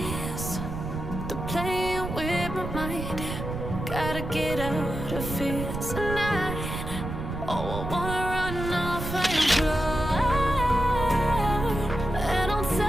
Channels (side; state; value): right; noise; rumble, 6 dB below the sound